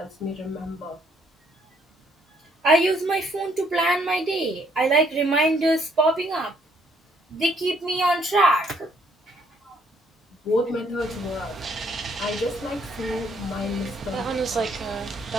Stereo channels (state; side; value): normal; both; correlation 0.67